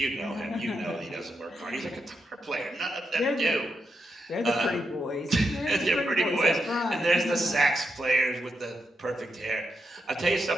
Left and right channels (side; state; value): both; normal; correlation 0.84